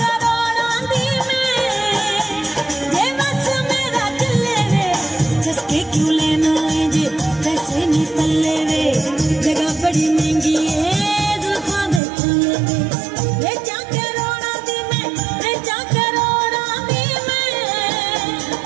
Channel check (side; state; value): left; drops out; at 12.0 s